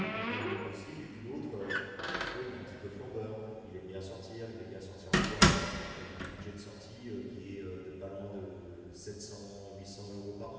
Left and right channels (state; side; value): identical; both; correlation 1.00